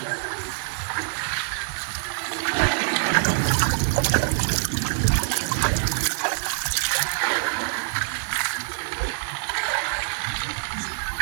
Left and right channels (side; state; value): left; silent; digital silence